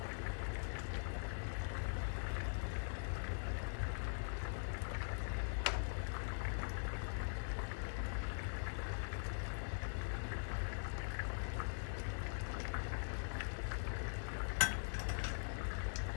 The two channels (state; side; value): silent; right; digital silence